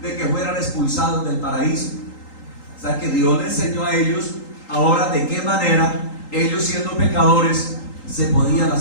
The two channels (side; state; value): right; late; 3.8 ms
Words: de que fueran expulsados del paraíso. O sea, que Dios les enseñó a ellos ahora de qué manera ellos, siendo pecadores, se podían